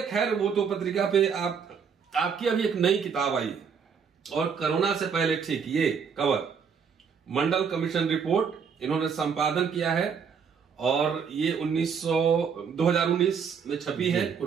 खैर वो तो पत्रिका पे आपकी अभी एक नई किताब आई और कोरोना से पहले, ठीक, ये कवर मंडल कमीशन रिपोर्ट इन्होंने संपादन किया है और ये 2019 में छपी है,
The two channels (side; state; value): left; quieter; 6.5 dB